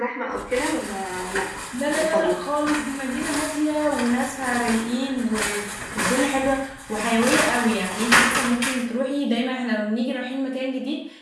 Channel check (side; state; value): both; identical; correlation 1.00